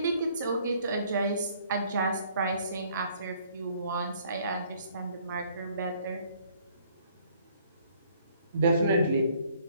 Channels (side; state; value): both; inverted; correlation -0.61